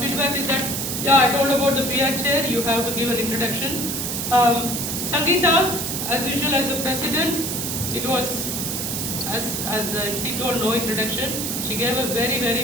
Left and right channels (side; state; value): right; noise; hiss, 2 dB below the sound